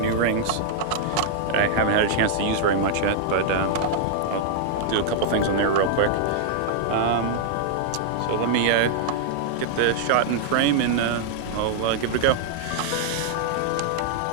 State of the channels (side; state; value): both; different; correlation -0.01